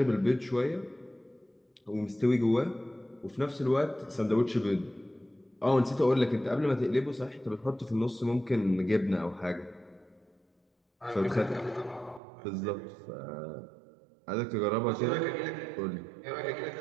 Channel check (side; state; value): left; drops out; at 12.2 s